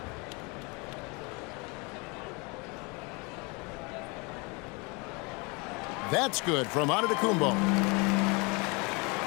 That's good from Antetokounmpo.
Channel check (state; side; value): quieter; right; 29.2 dB